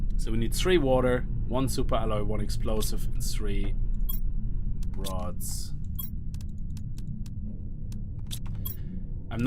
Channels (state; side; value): identical; both; correlation 1.00